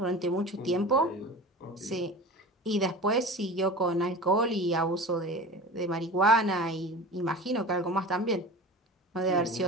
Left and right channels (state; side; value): normal; both; correlation 0.34